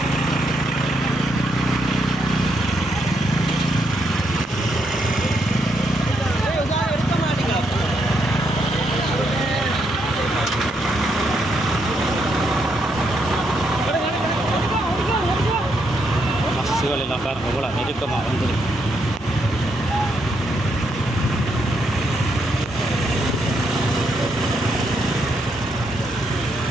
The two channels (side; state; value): both; normal; correlation 0.77